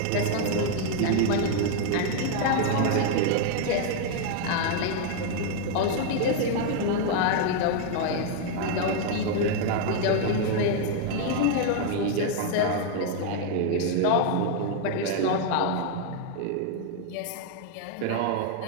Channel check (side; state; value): both; different; correlation 0.00